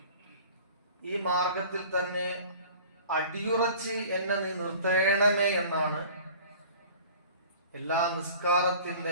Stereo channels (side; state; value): both; inverted; correlation -0.45